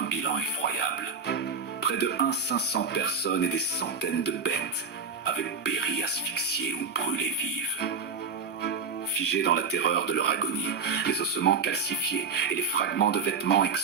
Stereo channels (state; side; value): quieter; left; 5.2 dB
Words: bilan effroyable. Près de 500 personnes et des centaines de bêtes avaient péri asphyxiées ou brûlées vives. Figés dans la terreur de leur agonie, les ossements calcifiés et les fragments de vêtements